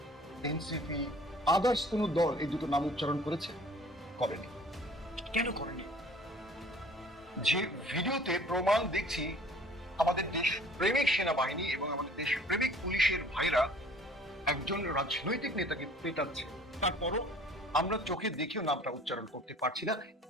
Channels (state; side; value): normal; both; correlation 0.51